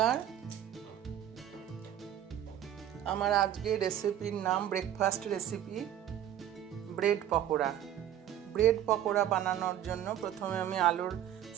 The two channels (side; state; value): left; quieter; 11.0 dB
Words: আমার আজকে রেসিপির নাম breakfast recipe bread pakora. Bread pakora বানানোর জন্য প্রথমে আমি আলুর